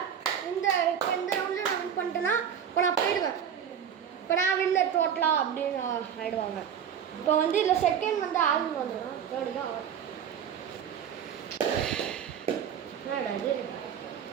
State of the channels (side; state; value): left; quieter; 8.4 dB